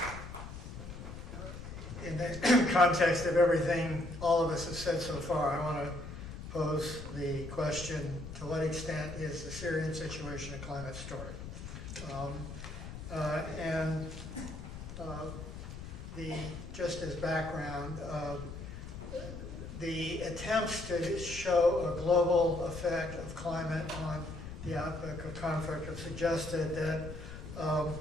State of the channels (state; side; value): noise; left; rumble, 10 dB below the sound